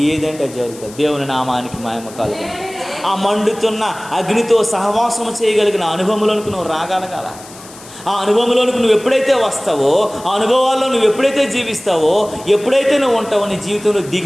ఏదంటే జరుగుతుంది. దేవుని నామానికి మహిమ కలుగును. ఆ మండుతున్న అగ్నితో సహవాసం చేయగలిగిన అనుభవంలోనికి నువ్వు రాగలగాల. ఆ అనుభవంలోనికి నువ్వు ఎప్పుడైతే వస్తావో, ఆ అనుభవాల్లో నువ్వు ఎప్పుడైతే జీవిస్తావో, ఎప్పుడైతే నువ్వు ఉంటావో నీ జీవితంలో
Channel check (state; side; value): noise; left; hiss, 19 dB below the sound